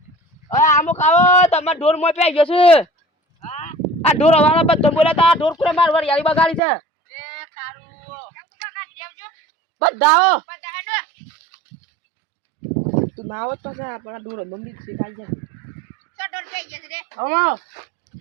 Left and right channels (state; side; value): drops out; left; at 6.6 s